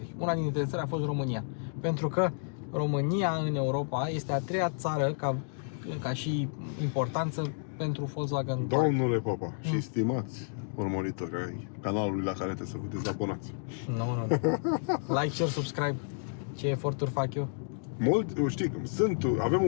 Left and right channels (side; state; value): right; silent; digital silence